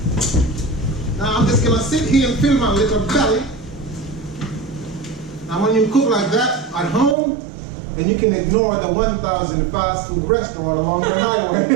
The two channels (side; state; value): left; drops out; at 7.2 s